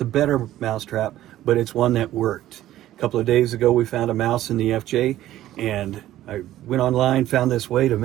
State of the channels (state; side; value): quieter; left; 13.8 dB